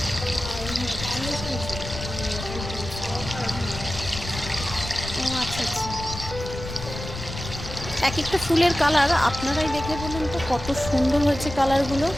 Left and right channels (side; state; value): left; noise; rumble, 9 dB below the sound